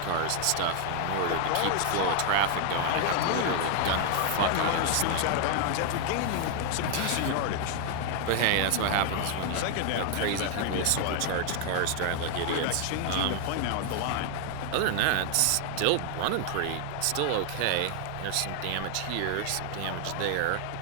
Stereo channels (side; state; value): both; different; correlation 0.00